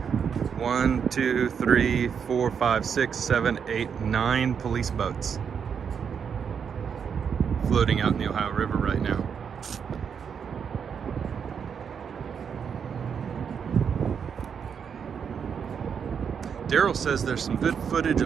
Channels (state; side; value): quieter; left; 7.0 dB